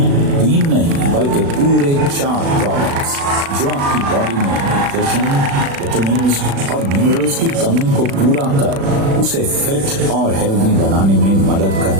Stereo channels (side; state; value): left; late; 36 ms